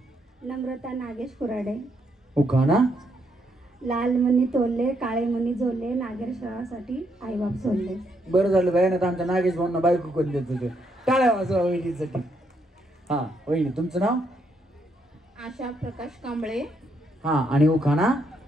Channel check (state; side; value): normal; both; correlation 0.76